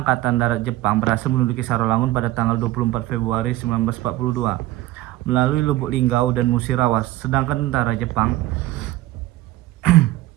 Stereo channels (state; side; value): quieter; left; 16.4 dB